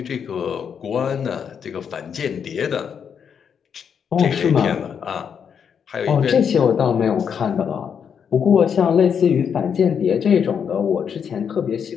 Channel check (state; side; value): quieter; right; 7.3 dB